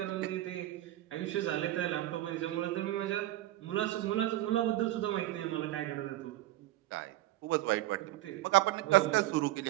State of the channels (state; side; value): quieter; left; 15.5 dB